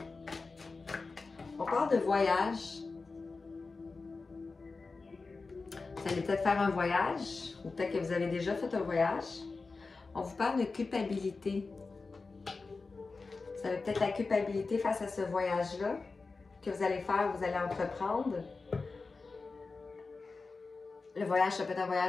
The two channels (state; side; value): quieter; right; 4.0 dB